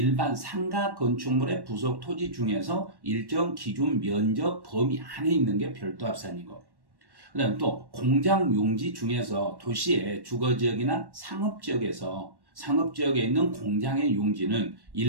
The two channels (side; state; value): left; late; 1.1 ms